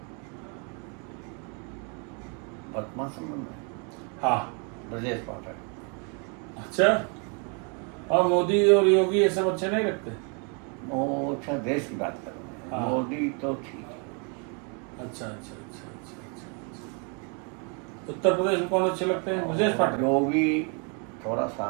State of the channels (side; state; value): left; quieter; 36.5 dB